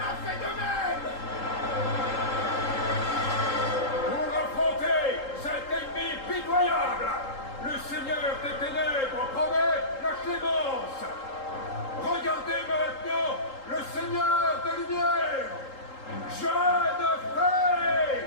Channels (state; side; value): late; right; 3.8 ms